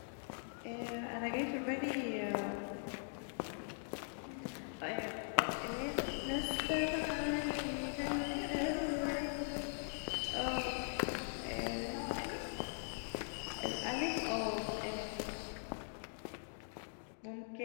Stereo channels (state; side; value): silent; right; digital silence